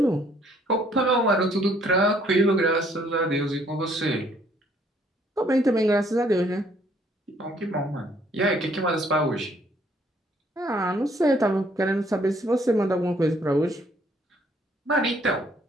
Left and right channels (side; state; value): both; normal; correlation 0.64